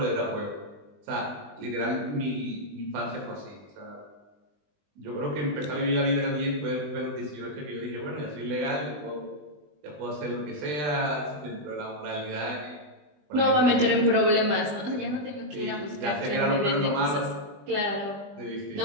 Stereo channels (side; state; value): left; late; 20 ms